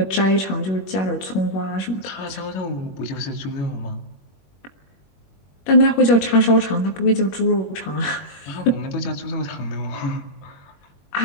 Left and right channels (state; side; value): late; right; 21 ms